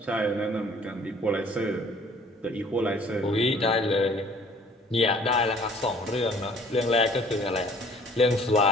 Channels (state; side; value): normal; both; correlation 0.55